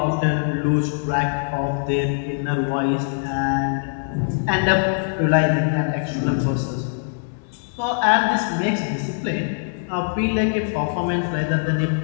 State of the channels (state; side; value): silent; right; digital silence